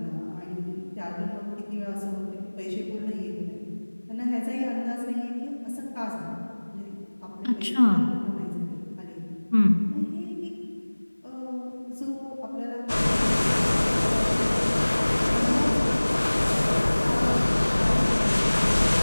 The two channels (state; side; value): inverted; both; correlation -1.00